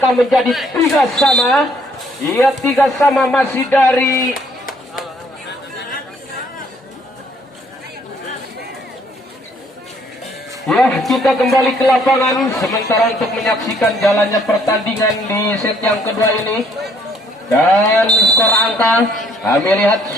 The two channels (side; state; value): both; normal; correlation 0.64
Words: menjadi 3-3. Ia 3-3, masih dari ya, kita kembali ke lapangan sementara untuk menyaksikan jalannya pertandingan di set yang kedua ini. Dan skor angka kami lihat